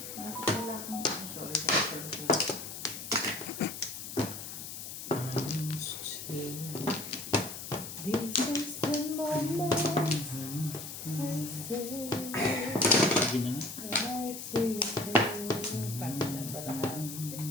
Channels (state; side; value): noise; left; hiss, 9 dB below the sound